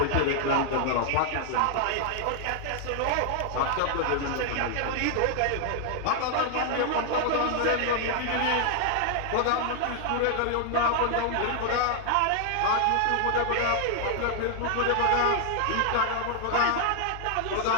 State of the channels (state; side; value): different; both; correlation 0.00